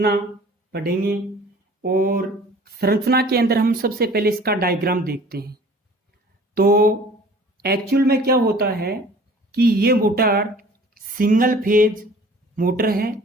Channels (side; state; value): both; normal; correlation 0.48